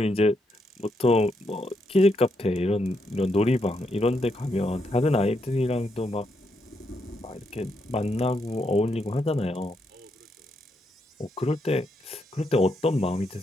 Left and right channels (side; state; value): both; normal; correlation 0.79